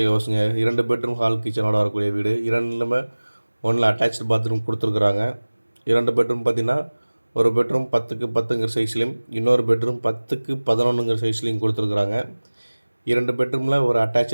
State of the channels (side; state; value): both; inverted; correlation -1.00